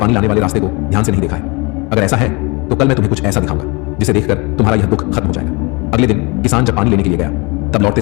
लाने वाले रास्ते को ध्यान से नहीं देखा है? अगर ऐसा है तो कल मैं तुम्हें कुछ ऐसा दिखाऊंगा जिसे देखकर तुम्हारा यह दुख खत्म हो जाएगा। अगले दिन किसान जब पानी लेने के लिए गया, तब लौटते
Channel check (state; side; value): quieter; right; 27.8 dB